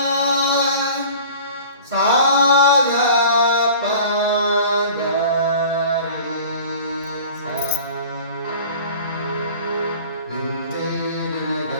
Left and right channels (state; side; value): inverted; both; correlation -0.44